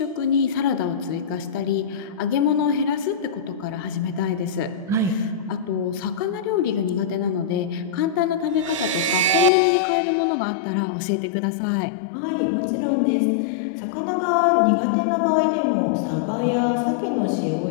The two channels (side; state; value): right; drops out; at 9.5 s